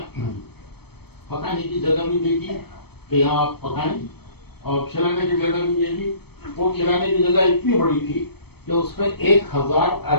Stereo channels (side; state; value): right; late; 0.97 ms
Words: پکانے کی جگہ بھی دے دی کہ یہاں آپ پکائیں، اور کھلانے کی جگہ بھی دے دی. وہ کھلانے کی جگہ اتنی بڑی تھی کہ اس میں 1000